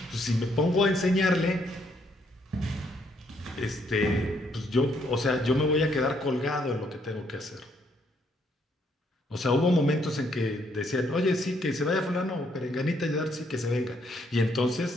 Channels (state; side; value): normal; both; correlation 0.71